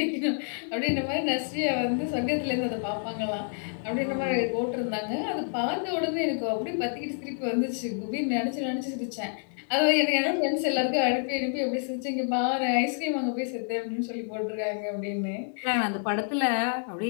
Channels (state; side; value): silent; right; 59 dB below the other